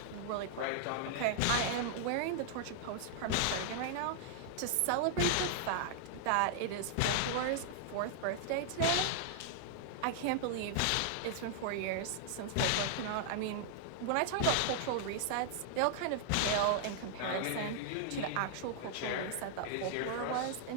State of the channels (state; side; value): different; both; correlation -0.01